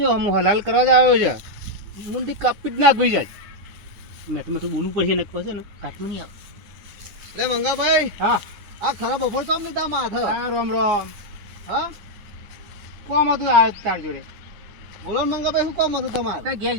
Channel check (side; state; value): left; late; 9.7 ms